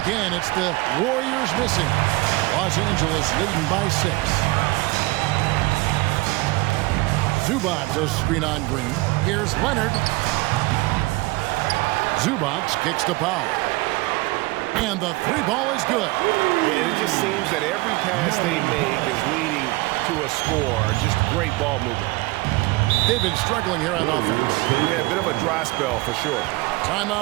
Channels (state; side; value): quieter; left; 22.3 dB